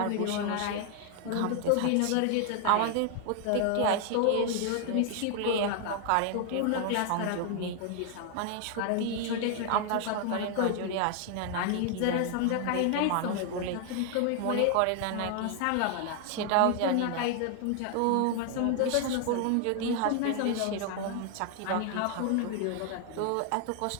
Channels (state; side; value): different; both; correlation 0.00